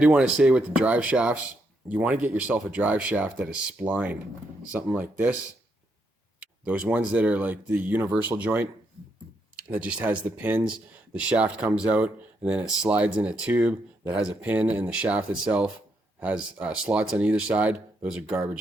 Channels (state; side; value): normal; both; correlation 0.78